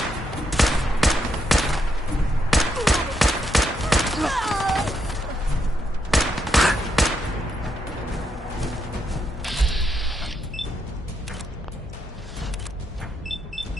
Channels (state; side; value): normal; both; correlation 0.79